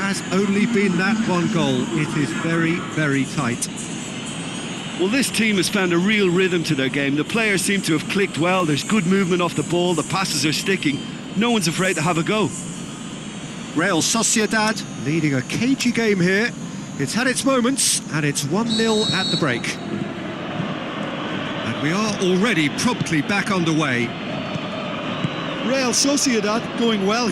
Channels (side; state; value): both; identical; correlation 1.00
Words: only been that one goal. It is very, very tight. Well, this team has found a real rhythm to their game. The players seem to have clicked well. There's good movement off the ball. The passes are sticking. No one's afraid to have a go. Real Sociedad leading a cagey game here. It's had its moments, and it's 1-0 at the break. We are already promptly back underway. Real Sociedad going well